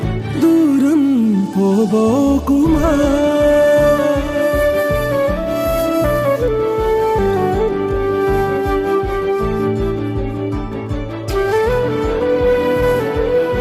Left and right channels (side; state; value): both; identical; correlation 1.00